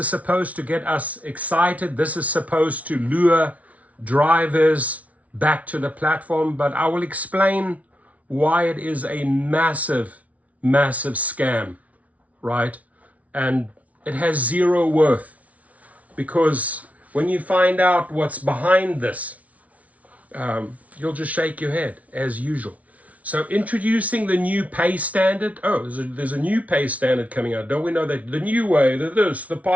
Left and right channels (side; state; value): left; late; 0.068 ms